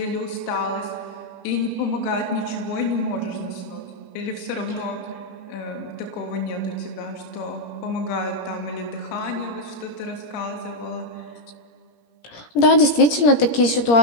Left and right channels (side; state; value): right; late; 17 ms